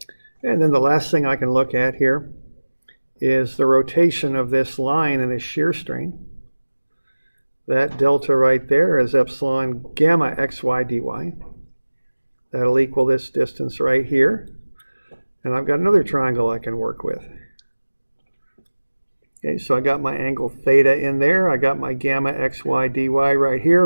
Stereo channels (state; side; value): inverted; both; correlation -1.00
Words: And then the last thing I can look at here is the rotation of this line in a shear strain. That delta right there is epsilon gamma xy dy. That'll equal this distance right here. And I've got another triangle I can work with. Okay, so I got my angle theta in there. I got my gamma xy dy right